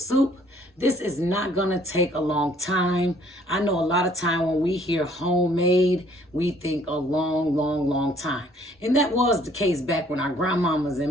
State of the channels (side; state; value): both; normal; correlation 0.60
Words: This is not gonna take a long time. I know a lot of time when we hear homemade, we think a long time. And that was the case back when our grandmamas